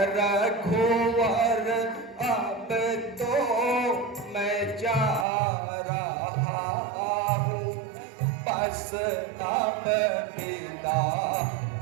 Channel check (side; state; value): left; drops out; at 5.2 s